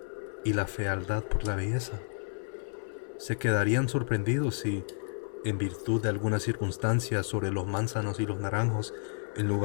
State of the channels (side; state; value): right; silent; 57 dB below the other